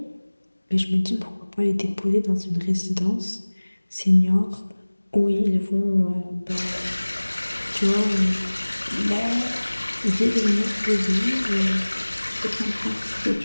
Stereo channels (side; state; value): both; inverted; correlation -1.00